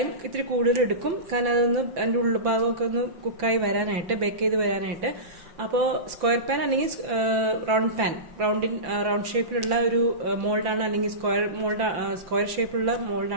ഇത്തിരി കൂടുതൽ എടുക്കും. കാരണം അതൊന്ന് അതിൻ്റെ ഉൾഭാഗമൊക്കെ ഒന്ന് കുക്കായി വരാനായിട്ട്, ബേക്ക് ചെയ്ത് വരാനായിട്ട്. അപ്പോൾ സ്ക്വയർ പാൻ അല്ലെങ്കിൽ റൗണ്ട് പാൻ, റൗണ്ട് ഷേപ്പിലുള്ള ഒരു മോൾഡാണ്, അല്ലെങ്കിൽ സ്ക്വയർ ഷേപ്പിലുള്ള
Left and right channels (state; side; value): late; left; 5.9 ms